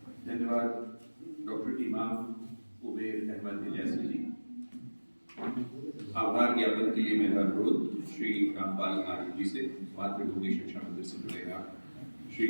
धन्यवाद डॉक्टर इमाम उबैर अहमद इलियासी जी। आभार ज्ञापन के लिए मेरा अनुरोध श्री रामपाल आर्य जी से, मातृभूमि शिक्षा मंदिर से जुड़े श्री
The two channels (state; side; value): inverted; both; correlation -1.00